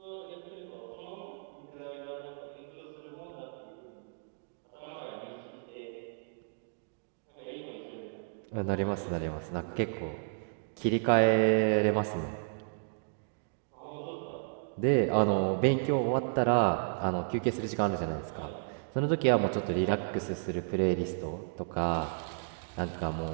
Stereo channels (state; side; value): silent; left; digital silence